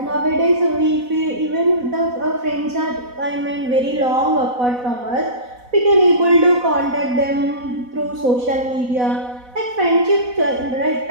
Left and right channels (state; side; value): late; left; 4.1 ms